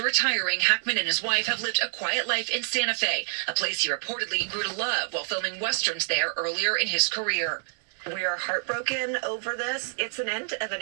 retiring, Hackman and his wife have lived a quiet life in Santa Fe, a place he reportedly grew to love while filming westerns there earlier in his career. We are heartbroken over this. It's an end of an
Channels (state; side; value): silent; left; 60 dB below the other